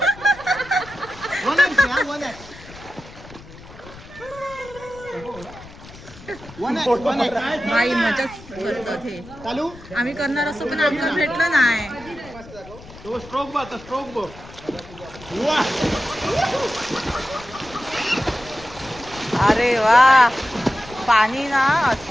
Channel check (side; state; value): left; noise; rumble, 19 dB below the sound